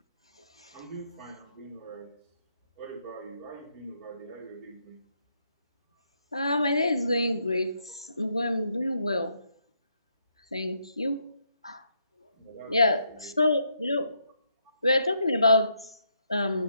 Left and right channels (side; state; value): both; inverted; correlation -0.77